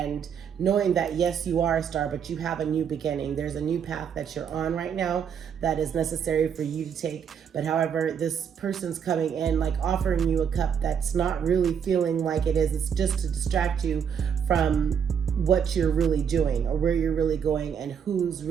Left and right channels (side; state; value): left; quieter; 7.6 dB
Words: knowing that yes, you are a star, but you have a new beginning. There's a new path that you're on right now that is necessary for you to take. But however, this person's coming in like offering you a cup that's not really feeling like it is. It's just to distract you from what you're really doing or where you're really going and who's